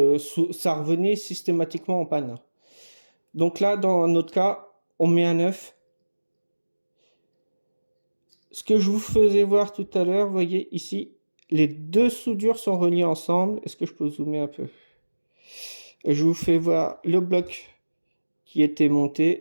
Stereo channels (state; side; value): inverted; both; correlation -1.00